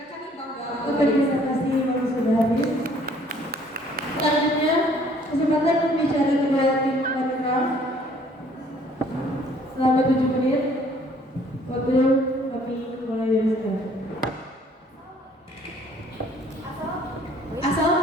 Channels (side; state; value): both; normal; correlation 0.59